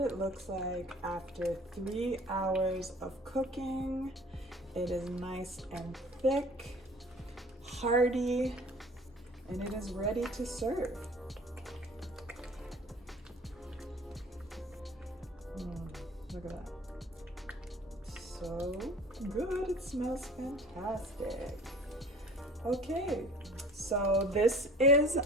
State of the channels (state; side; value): normal; both; correlation 0.46